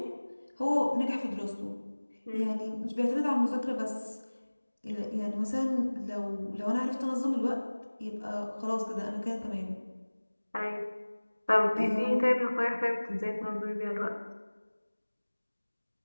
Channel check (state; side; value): inverted; both; correlation -1.00